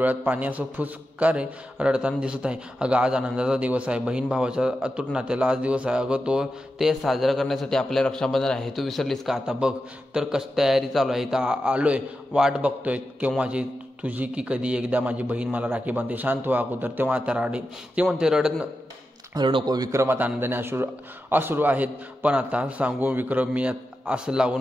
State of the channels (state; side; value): normal; both; correlation 0.90